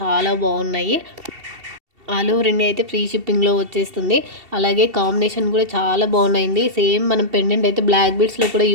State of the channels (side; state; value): left; late; 2.7 ms